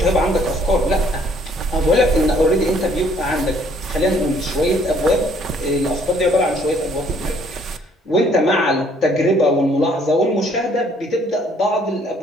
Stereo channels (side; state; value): both; normal; correlation 0.62